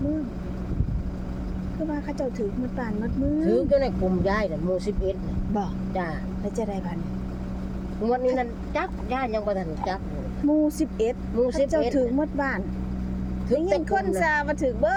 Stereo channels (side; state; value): both; identical; correlation 1.00